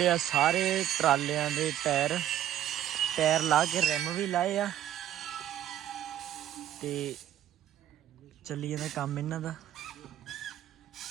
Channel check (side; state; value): left; quieter; 11.8 dB